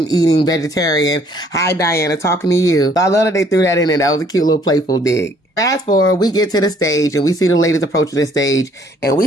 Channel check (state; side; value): normal; both; correlation 0.61